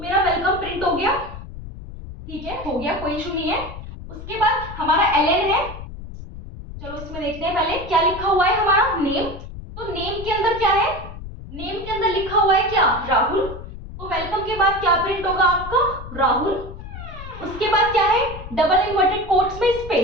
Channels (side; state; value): left; noise; rumble, 12 dB below the sound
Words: वेलकम प्रिंट हो गया। ठीक है, हो गया, कोई इशू नहीं है। उसके बाद हमारा ln है। चलो इसमें देखते हैं पहले क्या लिखा हुआ है, हमारा नेम। तो नेम के अंदर क्या है, नेम के अंदर लिखा हुआ है क्या, राहुल। तो वेलकम के बाद क्या प्रिंट होगा आपका, राहुल। उसके बाद क्या है, डबल इन्वर्टेड कोट्स में